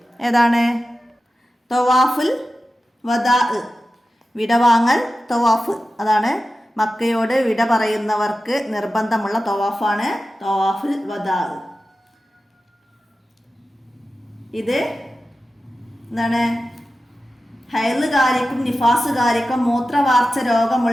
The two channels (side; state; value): both; normal; correlation 0.94